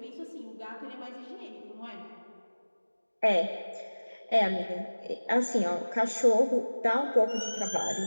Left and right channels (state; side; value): inverted; both; correlation -1.00